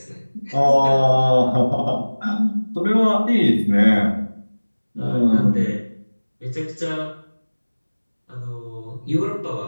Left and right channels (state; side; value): inverted; both; correlation -1.00